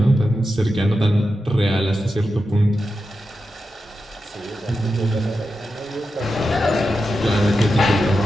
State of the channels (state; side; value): normal; both; correlation 0.90